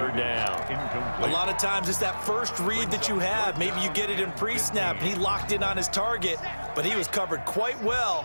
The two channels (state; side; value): inverted; both; correlation -1.00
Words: down. A lot of times it's that first read that you have. Maybe you get it in pre-snap, and he locked in on his target, but he was covered quite